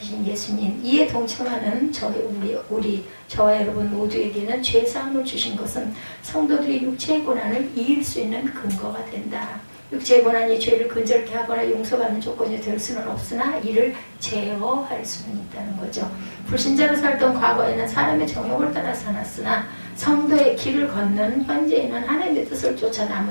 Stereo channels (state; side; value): inverted; both; correlation -1.00